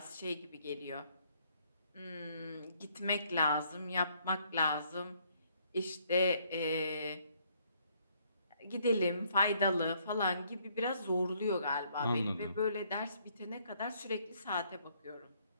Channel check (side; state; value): both; inverted; correlation -0.68